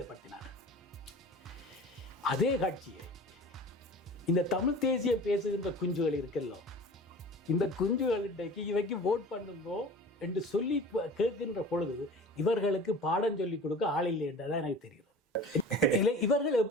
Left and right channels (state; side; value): normal; both; correlation 0.40